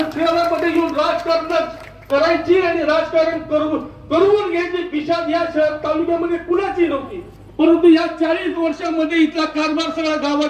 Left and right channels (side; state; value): both; identical; correlation 1.00